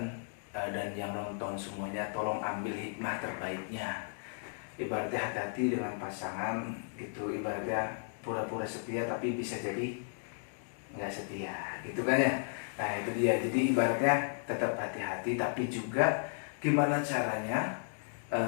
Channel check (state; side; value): silent; right; digital silence